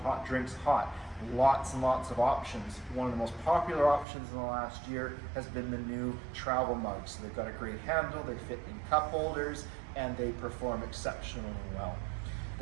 drinks hot. Lots and lots of options. One of the most popular options in the last year has been the new travel mugs. So they've got a great handle, they fit in cup holders, and they perform exceptionally well.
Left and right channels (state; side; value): drops out; left; at 4.0 s